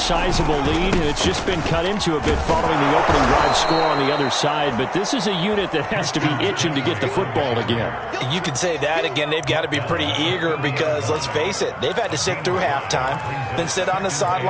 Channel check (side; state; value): both; identical; correlation 1.00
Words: lead, and it's just been cut into a bit following the opening drive score on the other side. But this is a unit that has to be itching to get the football again. You could say that again. They've got to be pretty eager because, let's face it, they've had to sit through halftime, then sit on the